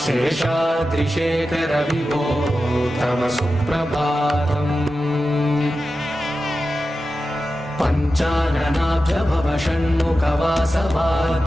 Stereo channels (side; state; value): both; normal; correlation 0.92